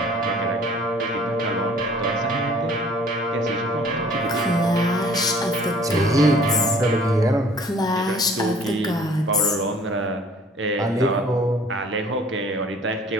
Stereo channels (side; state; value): both; normal; correlation 0.53